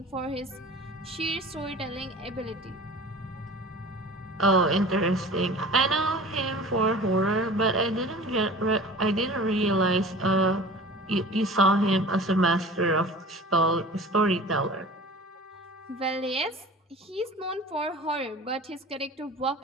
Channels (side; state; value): both; normal; correlation 0.40